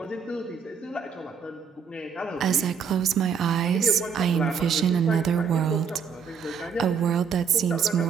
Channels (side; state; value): left; quieter; 6.5 dB